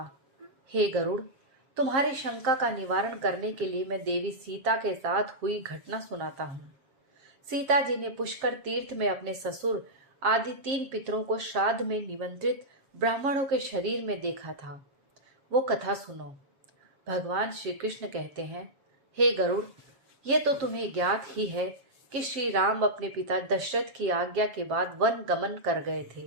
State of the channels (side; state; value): left; late; 7.5 ms